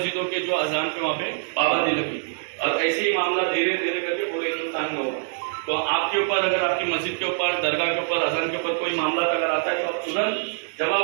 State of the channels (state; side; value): silent; left; 62 dB below the other